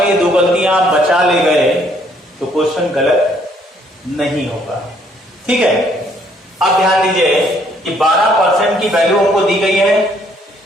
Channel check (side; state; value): both; normal; correlation 0.65